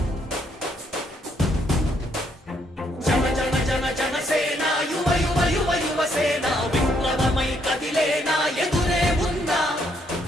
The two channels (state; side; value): normal; both; correlation 0.72